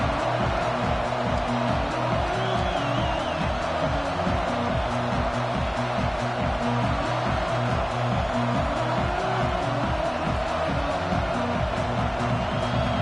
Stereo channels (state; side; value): identical; both; correlation 1.00